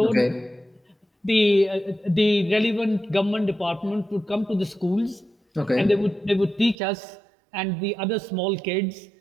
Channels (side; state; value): left; drops out; at 6.8 s